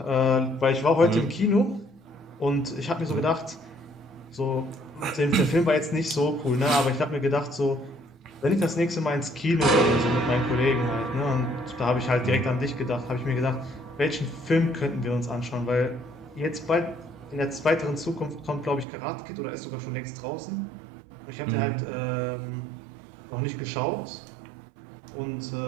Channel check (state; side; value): drops out; left; at 18.9 s